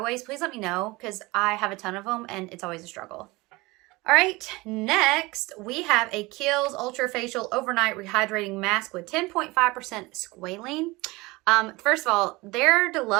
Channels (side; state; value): left; quieter; 22.6 dB